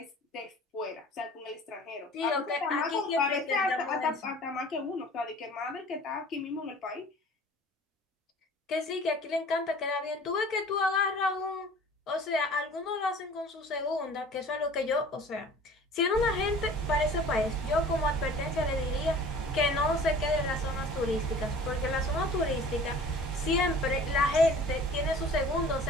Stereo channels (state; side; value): normal; both; correlation 0.46